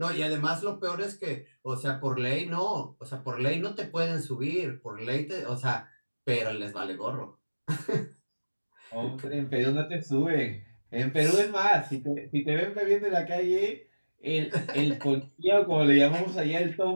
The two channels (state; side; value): inverted; both; correlation -1.00